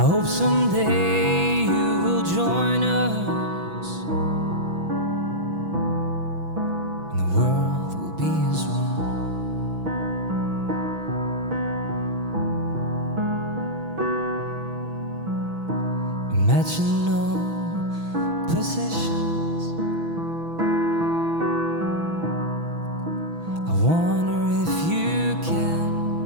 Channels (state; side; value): late; left; 6.1 ms